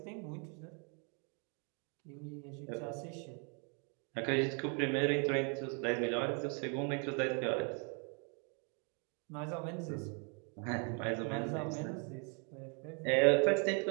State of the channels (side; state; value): left; quieter; 37.8 dB